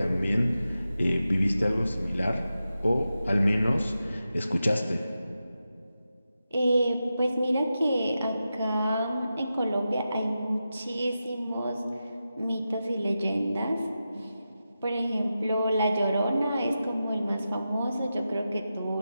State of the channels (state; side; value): inverted; both; correlation -0.91